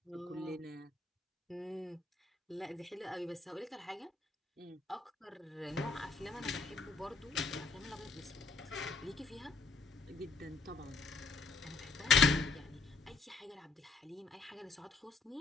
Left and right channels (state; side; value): quieter; right; 4.2 dB